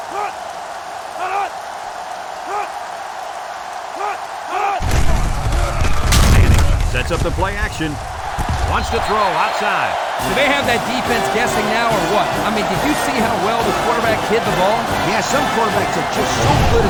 Manning sets up the play action. Wants to throw outside. Do they have that defense guessing now or what? I mean, did you see how well the quarterback hid the ball? Yeah, some quarterbacks are just so good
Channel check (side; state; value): both; identical; correlation 1.00